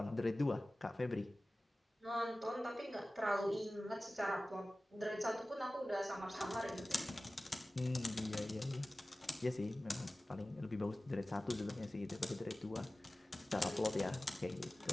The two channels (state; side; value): normal; both; correlation 0.97